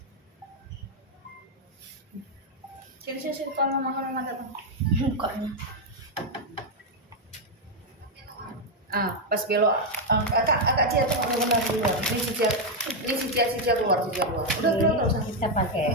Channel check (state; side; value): normal; both; correlation 0.02